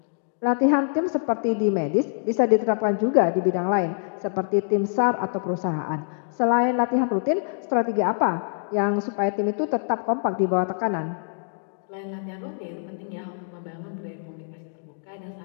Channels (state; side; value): silent; right; digital silence